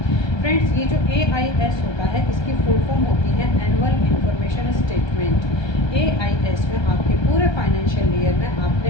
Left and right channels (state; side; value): late; right; 1.3 ms